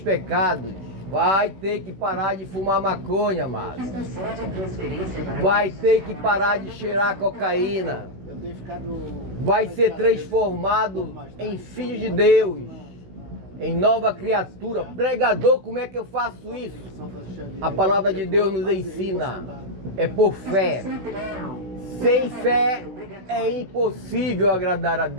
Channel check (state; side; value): late; left; 16 ms